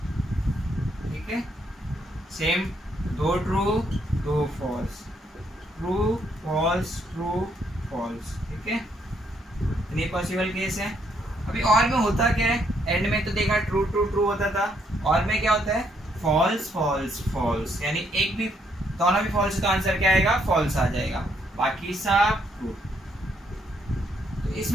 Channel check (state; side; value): normal; both; correlation 0.72